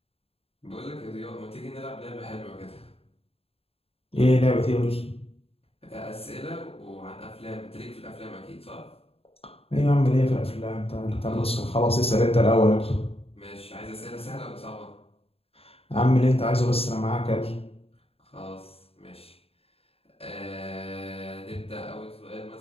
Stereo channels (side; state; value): right; late; 0.28 ms